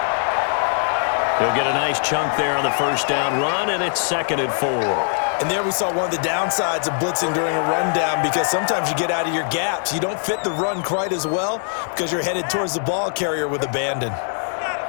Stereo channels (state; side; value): silent; right; digital silence